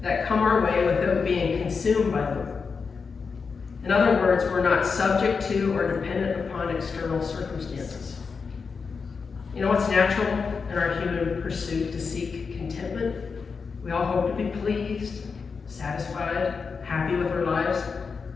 that come our way without being consumed by them. In other words, we're not subject to or dependent upon external circumstances. You know, it's natural in our human pursuit to seek contentment. We all hope to be pleased, satisfied, happy with our lives.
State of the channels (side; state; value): right; quieter; 5.2 dB